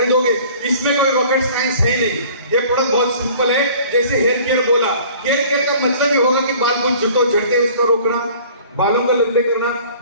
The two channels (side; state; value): both; inverted; correlation -0.49